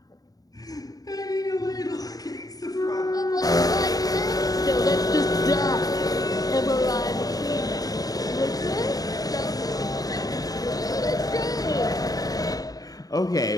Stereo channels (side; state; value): right; late; 0.18 ms